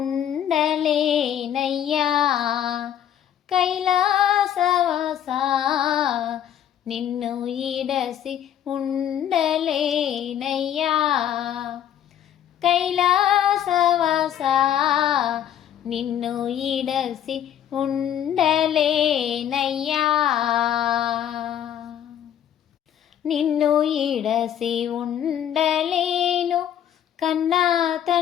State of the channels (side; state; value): right; quieter; 10.2 dB